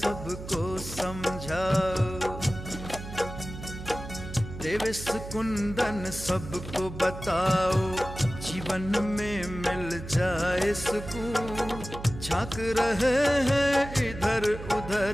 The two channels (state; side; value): noise; right; hum, 11 dB below the sound